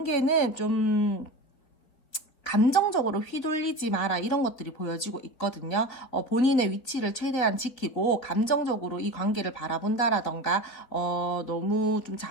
좀 감정적으로 휘둘리지 마라 이런 것들이 보여지고 있거든요. 본인의 위치를 최대한 지키고 감정적으로 이 관계를 바라본다라던가 너무 좀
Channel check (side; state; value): right; late; 4.0 ms